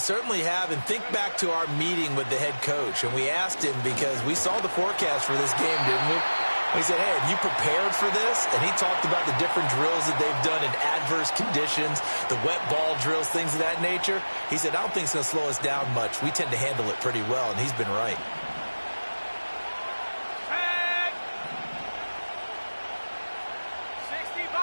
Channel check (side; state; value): both; inverted; correlation -1.00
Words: have, and think back to our meeting with the head coach, and we asked him because we saw the forecast for this game, didn't we? We said, hey, have you prepared for this? And he talked about the different drills that they've done in adverse conditions, the wet ball drills, things of that nature. He said, I don't think it's going to slow us down much. We tend to handle it pretty well, and he's been right.